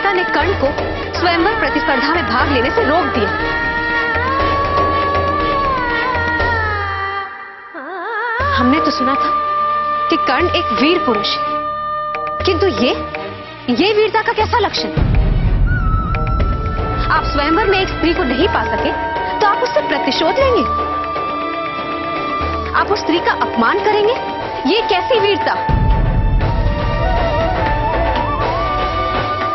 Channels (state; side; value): identical; both; correlation 1.00